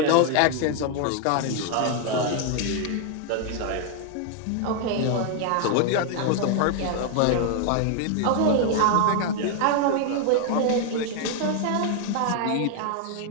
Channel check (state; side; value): different; both; correlation 0.00